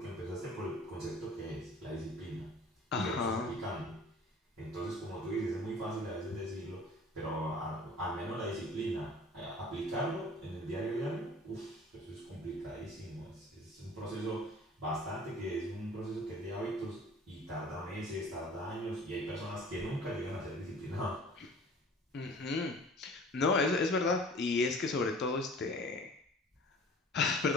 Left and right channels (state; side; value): normal; both; correlation 0.46